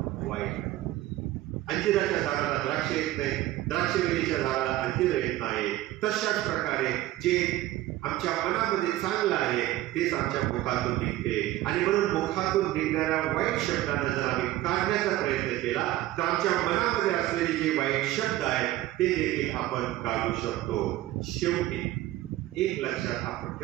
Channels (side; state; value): left; quieter; 15.4 dB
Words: वाईट. अंजिराच्या झाडाला द्राक्ष येत नाही, द्राक्षवेलीच्या झाडाला अंजीर येत नाही. तशाच प्रकारे जे आमच्या मनामध्ये चांगलं आहे तेच आमच्या मुखातून निघते. आणि म्हणून मुखातून निघणाऱ्या वाईट शब्दांना जर आम्ही काढण्याचा प्रयत्न केला तर आमच्या मनामध्ये असलेले जे वाईट शब्द आहेत ते देखील आपण काढू शकतो. शेवटी एक लक्षात आपण